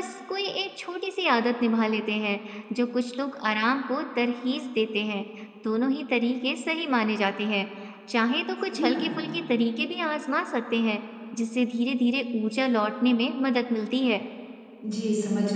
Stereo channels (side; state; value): both; identical; correlation 1.00